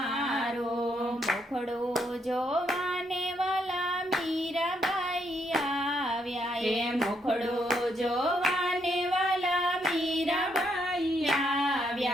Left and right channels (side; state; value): both; normal; correlation 0.75